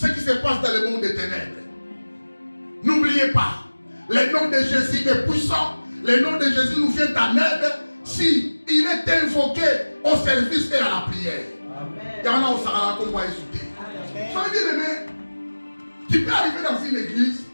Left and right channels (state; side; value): inverted; both; correlation -1.00